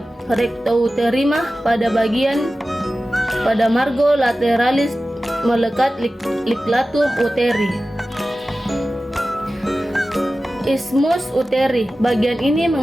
rectouterina pada margo lateralis melekat liklatum uteri. Isthmus uteri, bagian ini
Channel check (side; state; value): both; normal; correlation 0.95